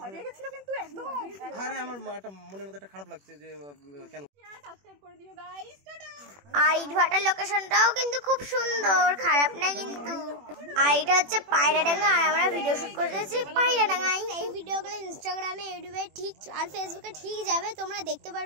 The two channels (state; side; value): late; left; 21 ms